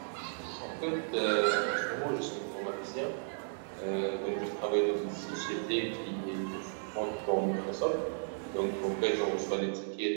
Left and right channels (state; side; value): silent; left; digital silence